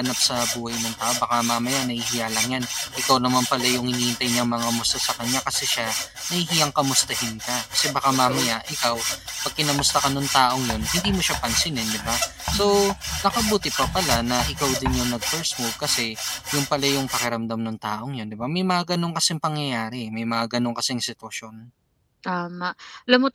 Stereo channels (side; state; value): both; identical; correlation 1.00